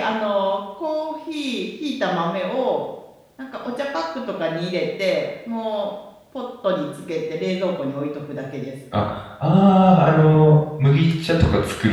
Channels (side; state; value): both; identical; correlation 1.00